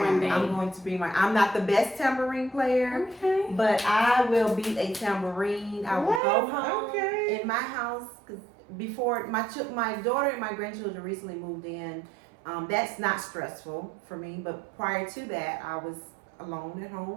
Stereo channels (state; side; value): drops out; left; at 6.2 s